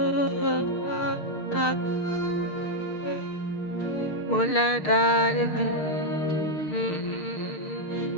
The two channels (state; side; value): late; right; 6.6 ms